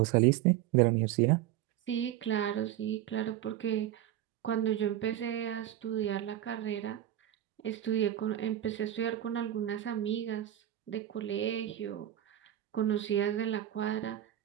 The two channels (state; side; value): quieter; left; 12.3 dB